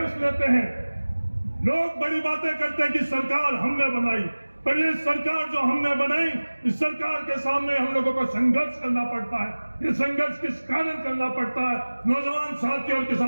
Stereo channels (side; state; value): both; inverted; correlation -1.00